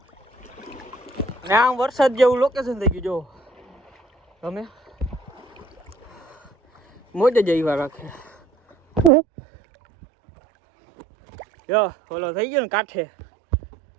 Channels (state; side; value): drops out; left; at 9.1 s